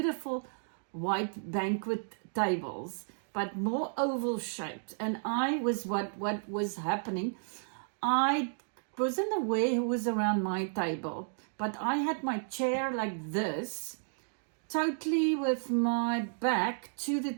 white banquet tables, but more oval shaped. And I was what was happening. I wasn't aware who was around my table, but I had my chair like this, totally with my back to the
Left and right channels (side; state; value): left; silent; digital silence